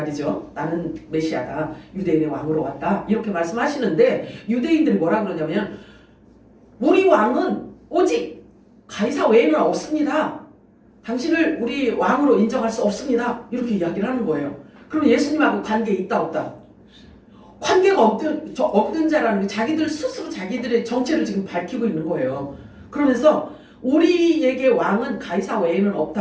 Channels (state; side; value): identical; both; correlation 1.00